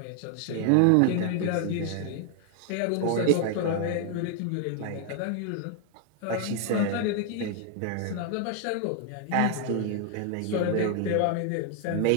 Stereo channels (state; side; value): different; both; correlation 0.00